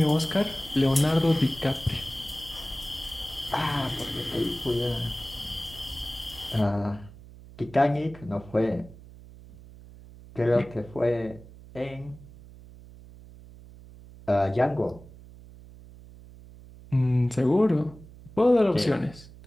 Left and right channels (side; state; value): right; noise; hum, 19 dB below the sound